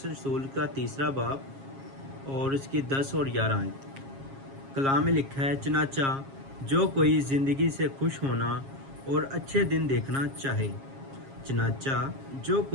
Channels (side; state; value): left; late; 7.4 ms